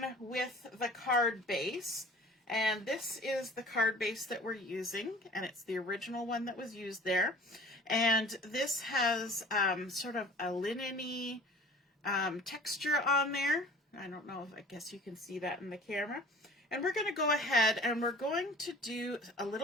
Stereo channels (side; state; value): both; normal; correlation 0.47